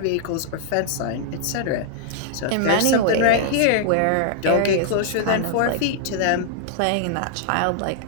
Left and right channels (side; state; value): both; different; correlation -0.01